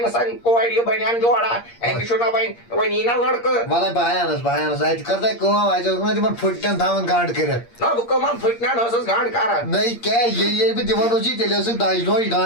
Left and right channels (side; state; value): right; late; 8.6 ms